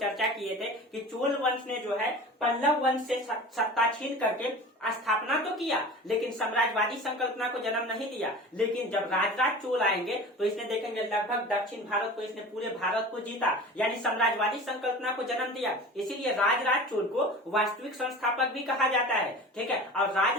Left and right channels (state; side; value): normal; both; correlation 0.37